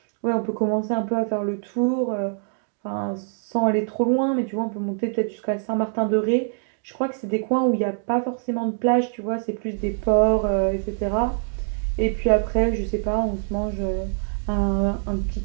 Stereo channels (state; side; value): silent; left; 63 dB below the other